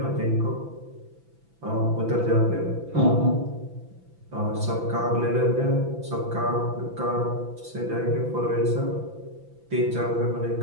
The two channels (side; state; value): left; late; 6.0 ms